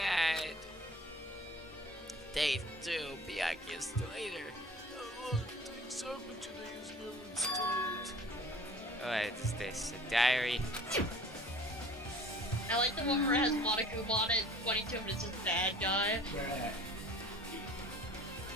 Day 2, Byakuya still later. A lot of things happened today is never started. What is this? A diary? I like the one where it has Monokuma on it, 22 and it's just bad guy. Bruh.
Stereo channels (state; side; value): normal; both; correlation 0.48